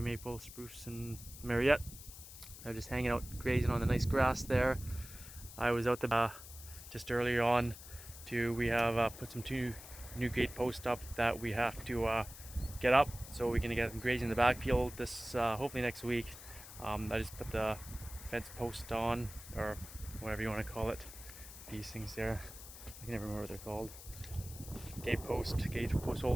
spruce, and Mariette. They're just hanging out grazing on the nice grass there. I was out the just earlier on we have put some two new gate posts up that we have to get up so we can get them grazing in the backfield this hopefully next week. I just put the fence post on, or whatever you want to call it, these things there. I can never remember what they're called. Gate post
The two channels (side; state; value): left; noise; hiss, 15 dB below the sound